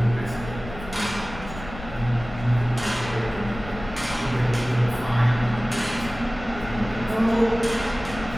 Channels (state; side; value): noise; left; rumble, 13 dB below the sound